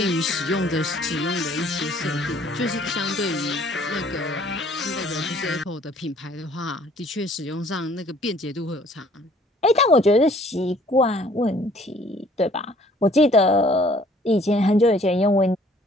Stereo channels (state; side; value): normal; both; correlation 0.58